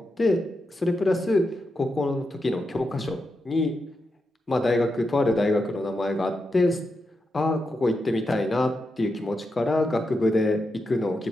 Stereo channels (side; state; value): both; normal; correlation 0.86